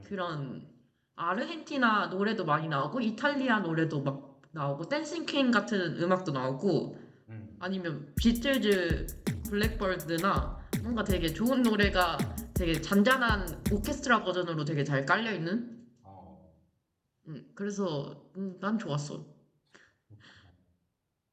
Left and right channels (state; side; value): identical; both; correlation 1.00